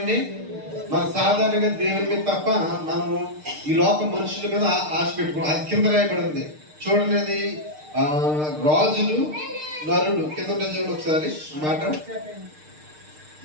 మన సాధారణంగా దేవుని మీద తప్ప మనము ఈ లోక మనుషుల మీద ఆశ పెట్టుకోవాలి. అది కింద రాయబడి ఉంది చూడండి. అది రాజులు నరుడు కింద చూడండి ఒకసారి మాట.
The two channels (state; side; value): late; left; 6.6 ms